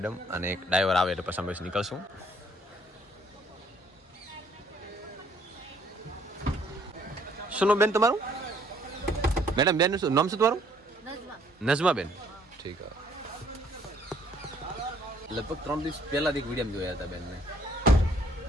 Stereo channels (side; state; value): both; normal; correlation 0.63